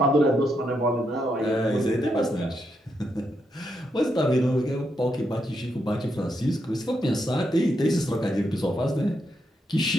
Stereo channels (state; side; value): normal; both; correlation 0.81